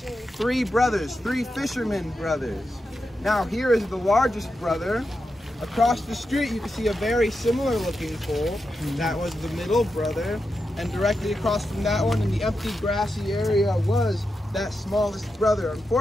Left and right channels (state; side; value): normal; both; correlation 0.88